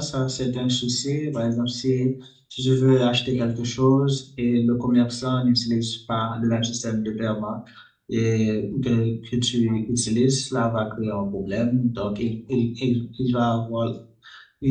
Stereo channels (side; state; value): both; identical; correlation 1.00